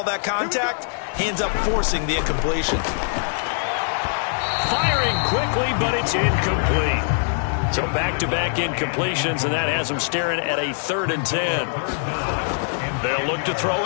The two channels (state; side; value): silent; right; digital silence